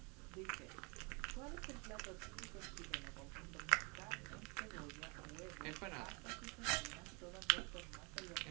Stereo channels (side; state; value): left; quieter; 30.9 dB